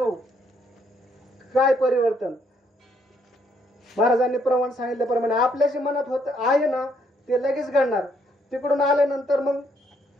काय परिवर्तन. महाराजांनी प्रमाण सांगितल्याप्रमाणे आपल्या जे मनात होत आहे ना ते लगेच घडणार. तिकडून आल्यानंतर मग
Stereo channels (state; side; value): normal; both; correlation 0.70